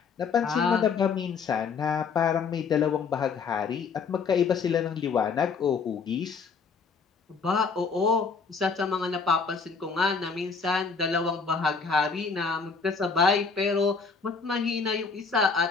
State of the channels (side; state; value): right; quieter; 5.2 dB